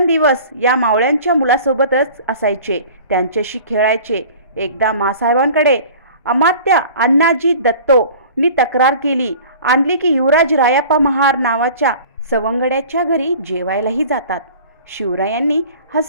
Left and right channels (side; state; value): both; inverted; correlation -0.44